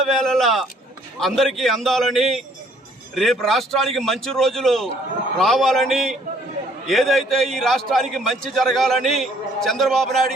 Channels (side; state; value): both; normal; correlation 0.62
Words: అందరికీ అందాలని, రేపు రాష్ట్రానికి మంచి రోజులు రావాలని, ఏదైతే ఈ రాష్ట్రానికి మంచి జరగాలని చంద్రబాబు